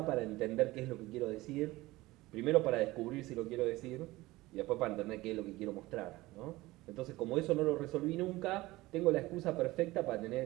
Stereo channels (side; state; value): left; quieter; 19.3 dB